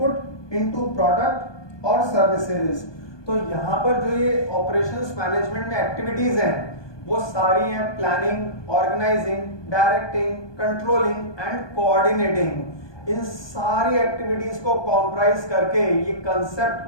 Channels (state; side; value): late; right; 1.2 ms